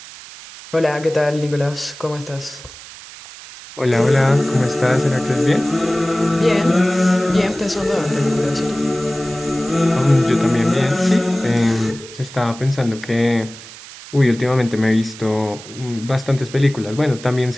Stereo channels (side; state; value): right; noise; hiss, 16 dB below the sound